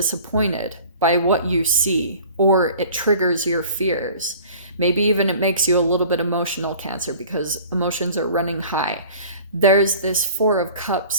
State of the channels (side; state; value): both; inverted; correlation -0.46